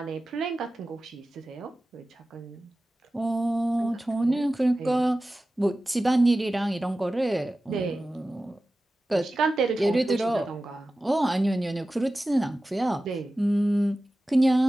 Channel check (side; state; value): both; normal; correlation 0.95